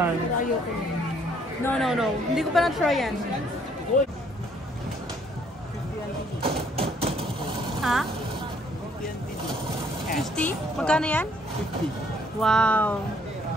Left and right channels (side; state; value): both; normal; correlation 0.64